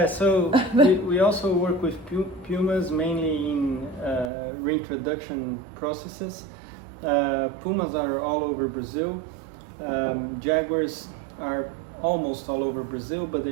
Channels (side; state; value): left; drops out; at 4.3 s